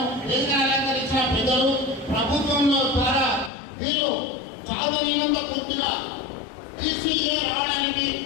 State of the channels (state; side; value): drops out; right; at 3.5 s